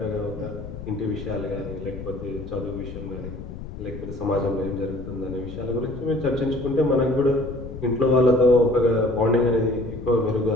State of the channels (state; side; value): noise; left; rumble, 11 dB below the sound